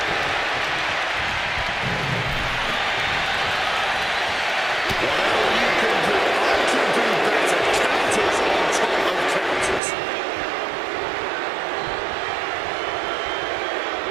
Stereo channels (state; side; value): drops out; left; at 9.8 s